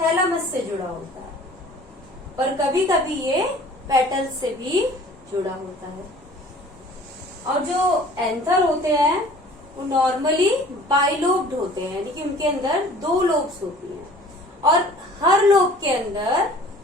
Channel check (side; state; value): both; normal; correlation 0.49